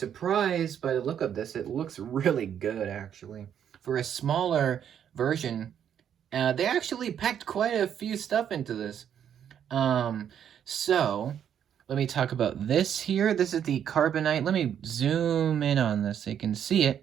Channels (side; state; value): left; quieter; 9.1 dB